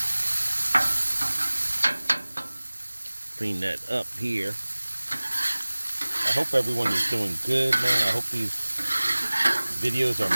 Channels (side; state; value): both; inverted; correlation -1.00